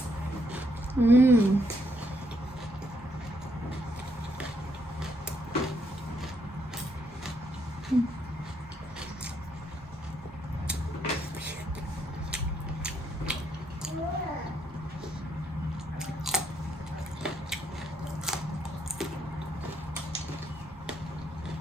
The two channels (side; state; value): both; normal; correlation 0.74